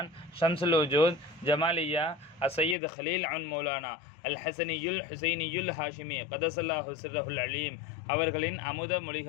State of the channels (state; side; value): drops out; right; at 2.8 s